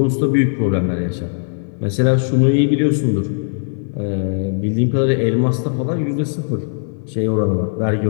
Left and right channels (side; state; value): right; silent; 67 dB below the other